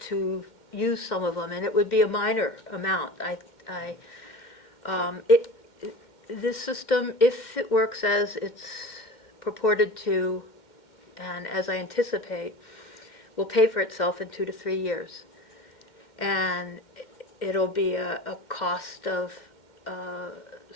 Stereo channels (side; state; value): right; late; 2.1 ms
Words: use some of them, and it would be a minor amount. This system, if it works as it's purported to, and as I anticipate, will pay for itself in 2 to 3 years. And it'll be a cost of